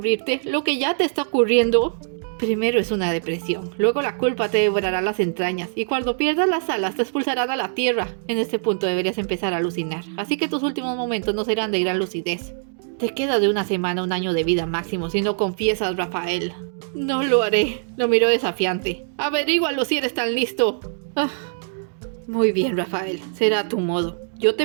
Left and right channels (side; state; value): left; silent; digital silence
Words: ¿Lo que ya te está ocurriendo? Primero es una depresión, luego la culpa te devorará las entrañas y cuando pierdas las alas te expulsarán a la tierra. En este punto deberías empezar a alucinar, así que tus últimos momentos no serán de gran lucidez. Te queda de 1 semana a 1 año de vida máximo si no confiesas, Rafael. No lo haré, lo miró desafiante. Averígualo si eres tan listo. Muy bien, Rafael, será a tu modo. Yo